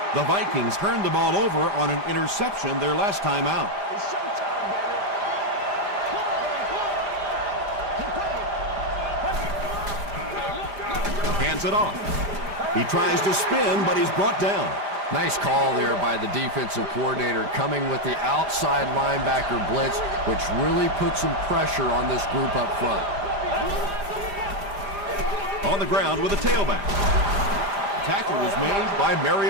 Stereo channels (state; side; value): late; left; 5.0 ms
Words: The Vikings turned the ball over on an interception their last time out. Hands it off. He tries to spin, but he's brought down. Nice call there by the defensive coordinator, coming with the outside linebacker blitz, which really puts some pressure on this group up front. On the ground with a tailback. Tackle was made by